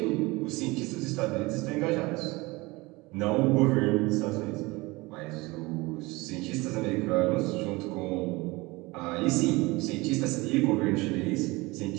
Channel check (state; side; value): quieter; left; 22.9 dB